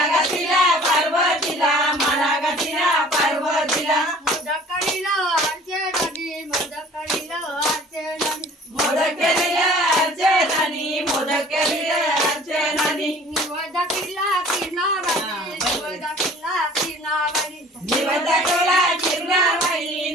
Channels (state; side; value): normal; both; correlation 0.49